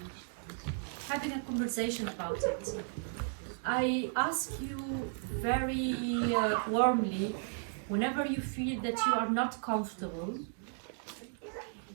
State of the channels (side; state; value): left; silent; 55 dB below the other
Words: having a conversation about it. I ask you very warmly, whenever you feel that you are not comfortable,